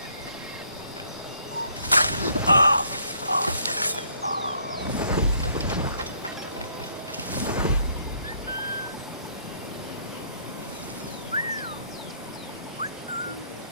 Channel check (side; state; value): both; inverted; correlation -0.66